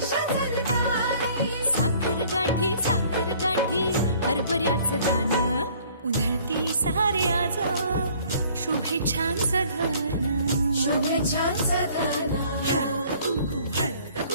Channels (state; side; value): inverted; both; correlation -0.55